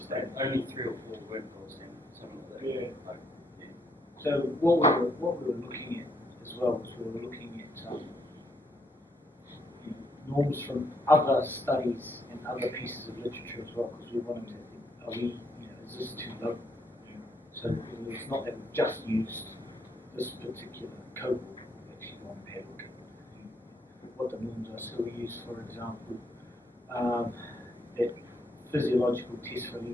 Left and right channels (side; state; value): both; normal; correlation 0.73